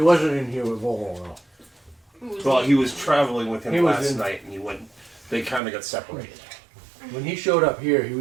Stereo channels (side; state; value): left; drops out; at 5.6 s